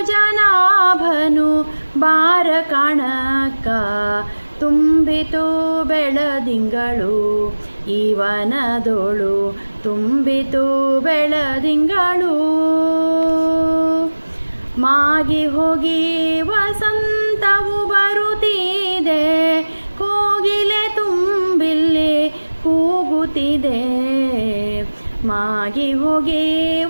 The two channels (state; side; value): inverted; both; correlation -1.00